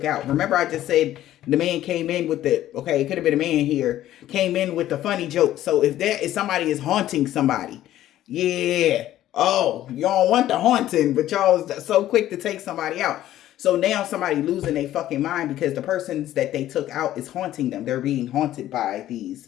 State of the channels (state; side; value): quieter; right; 13.3 dB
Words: out. Remember, I just said the man came in with the, okay, it could have been a man here, came in with the funny joke. So if somebody is haunting somebody, yeah. Oh, y'all want the haunting, but y'all so quick to take somebody out. So now somebody losing their fucking mind because the persons that they took out is haunting them. They're being haunted by these